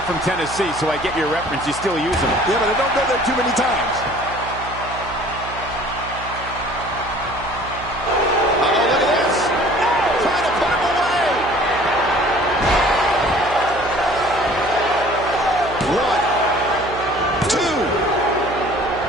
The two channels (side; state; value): right; noise; hum, 13 dB below the sound